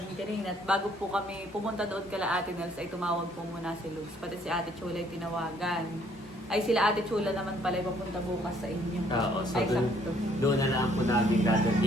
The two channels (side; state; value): both; normal; correlation 0.64